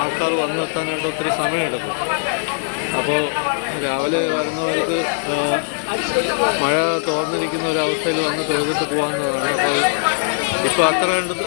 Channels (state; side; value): silent; right; 66 dB below the other